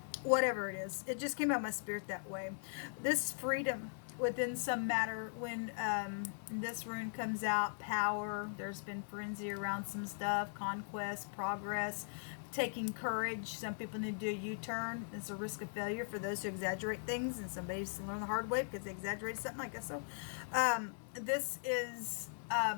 whatever it is. It just came out of my spirit that way. This freedom within some matter, when this rune comes out, power, there's been frenzy around some stuff, conquest, progress, taking courage. Some people need to do a U-turn. It's a risk of failure for those who exaggerate things, and somebody's learn the hard way because they exaggerated something, I guess so. This is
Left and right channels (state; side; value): silent; right; digital silence